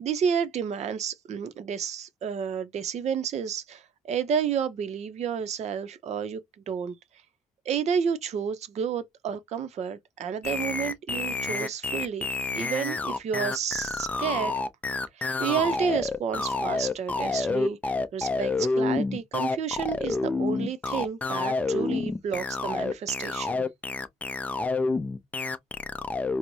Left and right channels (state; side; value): normal; both; correlation 0.60